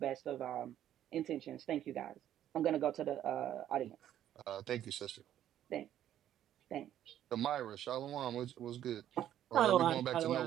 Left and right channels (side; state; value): left; quieter; 11.4 dB